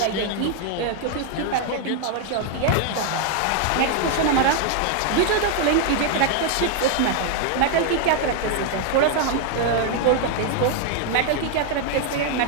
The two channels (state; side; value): different; both; correlation 0.00